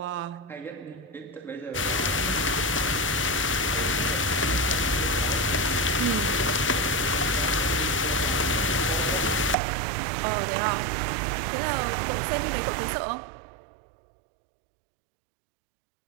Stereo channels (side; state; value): left; drops out; at 9.6 s